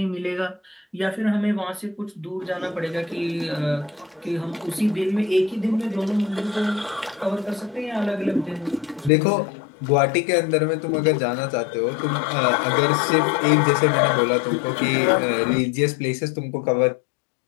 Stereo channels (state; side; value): drops out; right; at 9.1 s